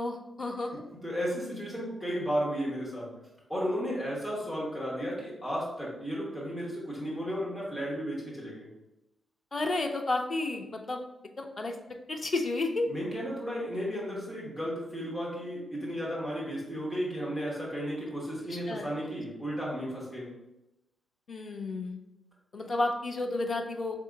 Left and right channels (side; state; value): both; normal; correlation 0.85